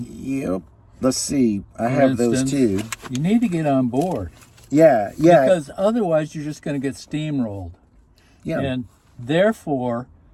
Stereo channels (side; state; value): both; identical; correlation 1.00